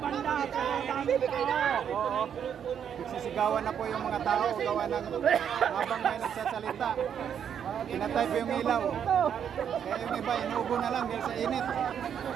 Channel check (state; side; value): quieter; left; 8.4 dB